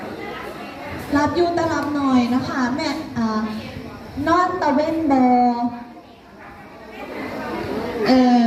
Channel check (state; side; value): identical; both; correlation 1.00